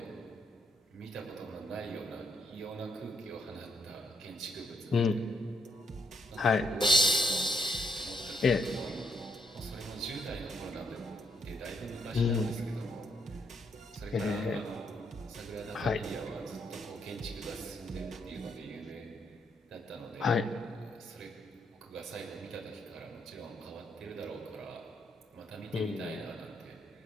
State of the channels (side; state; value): both; normal; correlation 0.76